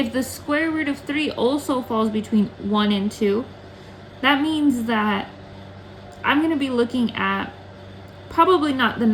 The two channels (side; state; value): both; identical; correlation 1.00